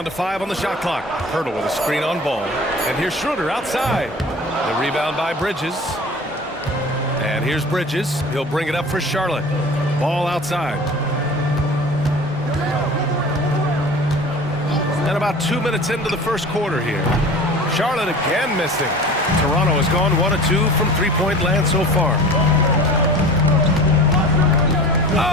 to 5 on the shot clock. Pirtle with a screen on Ball. And here's Schroeder outside. The rebound by Bridges. And here's Bridges. He'll bring it up for Charlotte. Ball outside. And about 2 minutes into the first quarter here. Charlotte again missing. Toronto has gone 1 of 2 from three-point land so far.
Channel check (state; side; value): normal; both; correlation 0.39